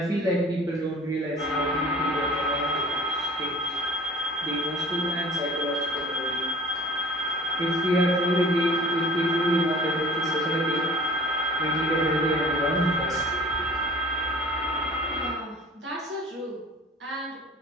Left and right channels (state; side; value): normal; both; correlation 0.47